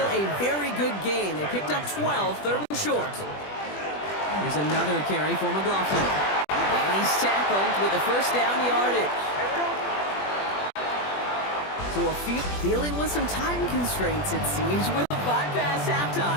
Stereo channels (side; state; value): right; late; 20 ms